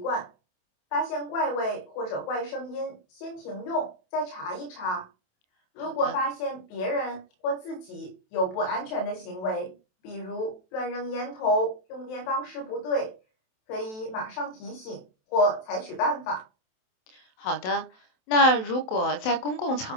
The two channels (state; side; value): late; right; 27 ms